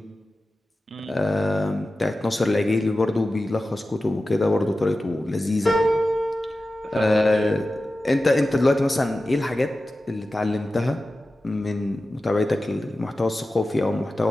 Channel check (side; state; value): both; normal; correlation 0.94